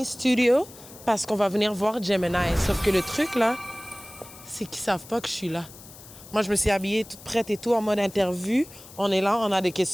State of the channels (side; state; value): left; noise; hiss, 19 dB below the sound